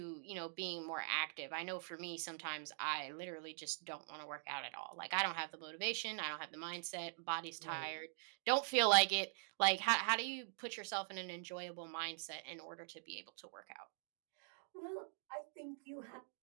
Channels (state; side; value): silent; left; digital silence